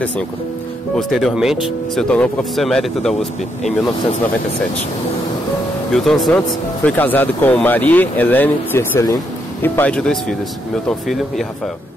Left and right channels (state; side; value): normal; both; correlation 0.78